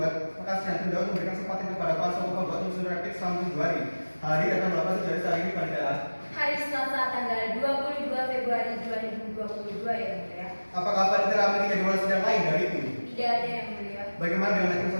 maka sidang tunda untuk memberikan kesempatan kepada kuasa hukum penggugat untuk menyusun replik selama 7 hari. Hari akan melakukan dari hari ini pada Hari Selasa tanggal 22 Februari 2022 ya mulia. apakah panitera memiliki jadwal sidang lain dari itu? Tidak ada yang mulia. Bagaimana dengan hakim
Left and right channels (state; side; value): inverted; both; correlation -1.00